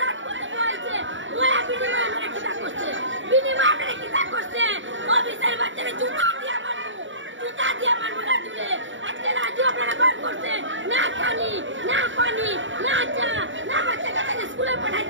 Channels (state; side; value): late; left; 0.55 ms